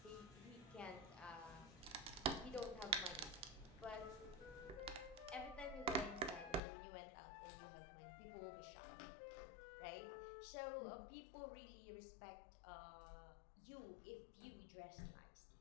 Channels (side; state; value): right; drops out; at 6.6 s